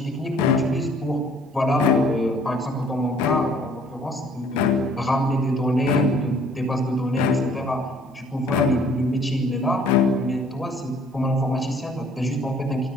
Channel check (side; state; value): both; normal; correlation 0.57